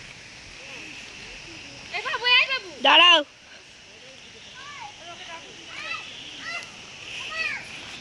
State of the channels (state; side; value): identical; both; correlation 1.00